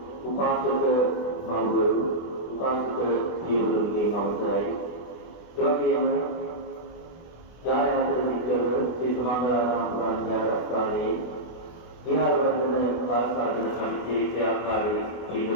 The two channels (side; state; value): right; late; 24 ms